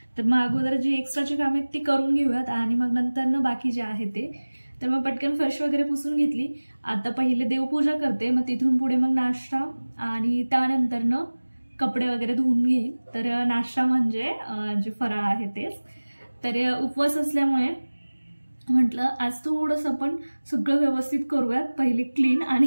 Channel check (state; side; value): inverted; both; correlation -1.00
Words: तर मग अगोदर जी एक्स्ट्राची कामे आहेत ती करून घेऊयात आणि मग नंतर बाकी जे आहे ते। तर मग पटकन फरशी वगैरे पुसून घेतली। आता पहिले देवपूजा करते, मग तिथून पुढे मग नाश्ता आणि त्यानंतर कपडे वगैरे धुवून घेईल। तर नाश्ता म्हणजे जे फराळ आहे तेच। तर उपवास असल्यामुळे म्हटलं आज थोडंसं आपण सगळं व्यवस्थित करूयात, पहिले क्लीन